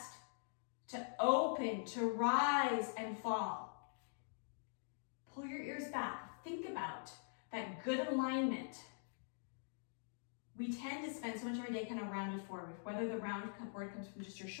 to open, to rise and fall. Pull your ears back. Think about that good alignment. We tend to spend so much of our day kind of rounded forward, whether the round forward comes from just your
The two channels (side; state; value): right; silent; digital silence